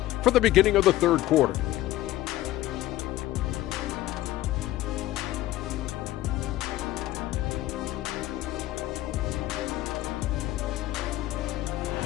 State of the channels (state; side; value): quieter; right; 15.5 dB